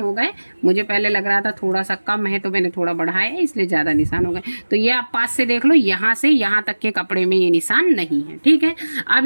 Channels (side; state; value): both; inverted; correlation -1.00